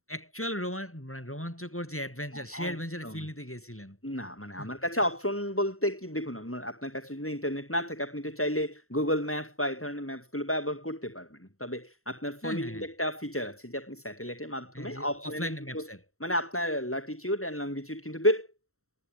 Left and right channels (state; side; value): late; right; 0.63 ms